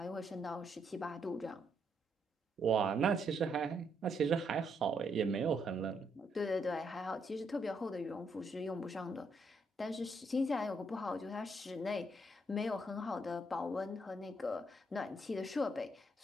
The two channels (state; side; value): normal; both; correlation 0.75